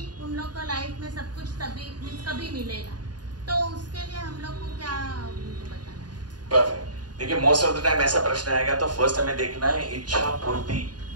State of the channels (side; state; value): left; late; 0.70 ms